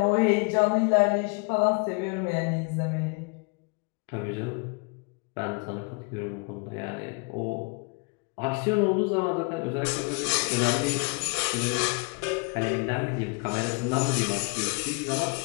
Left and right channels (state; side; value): quieter; right; 31.5 dB